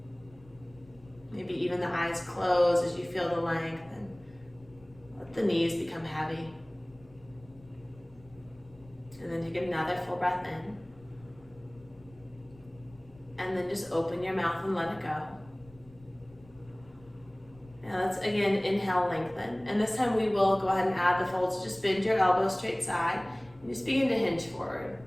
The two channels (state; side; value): noise; left; rumble, 24 dB below the sound